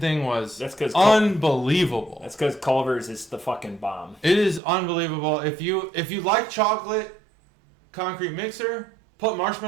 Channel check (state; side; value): drops out; left; at 4.6 s